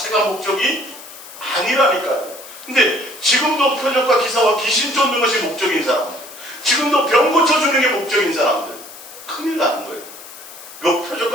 목적이 아니라니까요. 근데 지금도 표적과 기사와 귀신 쫓는 것이 목적인 사람들, 지금도 병 고쳐주는 게 목적인 사람들, 큰일 나는 거예요.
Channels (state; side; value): noise; left; hiss, 16 dB below the sound